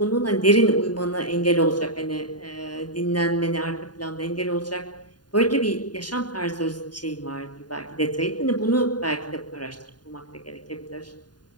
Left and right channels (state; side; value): late; right; 0.70 ms